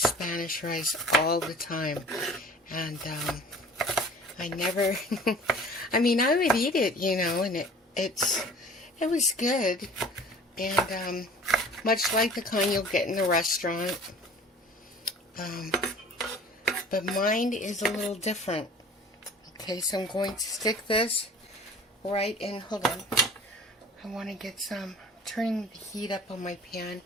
rice all the time, and I never I mean, I would eat it, you know, and it was good, and much like the kind you'll get in the restaurant, but mine is a little different. Okay, so I'm going to stick this right in. Hold on. I want to get some, turning the heat up on my pan,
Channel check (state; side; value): normal; both; correlation 0.46